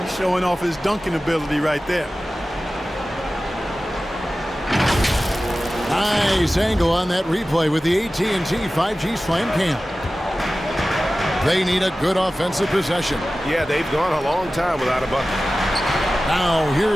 He's showing off his dunking ability right there. Nice angle on that replay with the AT&T 5G Slam Cam. They need a good offensive possession. Yeah, they've gone a long time without a bucket. Now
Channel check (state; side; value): normal; both; correlation 0.96